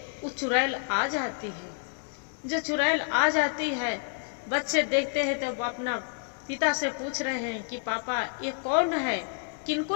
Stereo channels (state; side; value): silent; right; 59 dB below the other